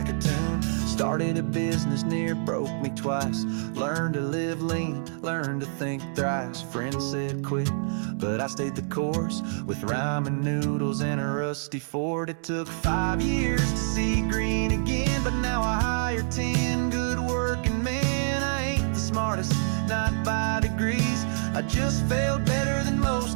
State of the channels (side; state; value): left; silent; digital silence